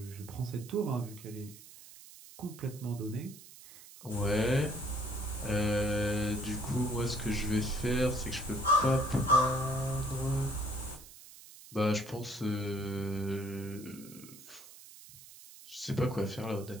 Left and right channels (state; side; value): noise; right; hiss, 18 dB below the sound